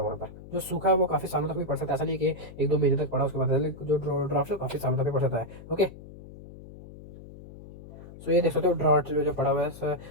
पर। जो सूखा है वो काफ़ी सालों तक भी पड़ सकता है, ऐसा नहीं है कि 1-2 महीने तक पड़ा उसके बाद, जो ड्राफ्ट है काफी सालों तक भी पड़ सकता है। ओके, सो ये देख सकते हो ड्राफ्ट जो पड़ा हुआ है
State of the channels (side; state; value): left; noise; hum, 16 dB below the sound